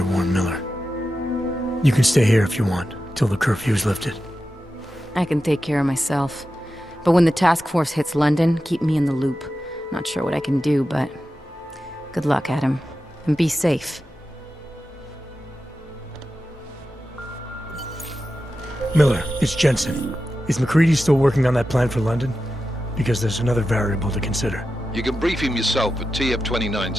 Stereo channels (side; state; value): both; normal; correlation 0.91